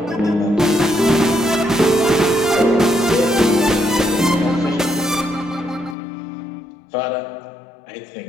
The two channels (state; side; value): drops out; right; at 6.0 s